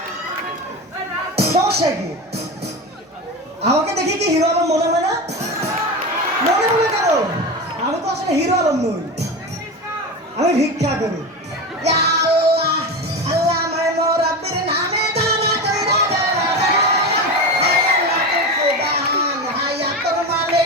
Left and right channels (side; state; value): both; normal; correlation 0.23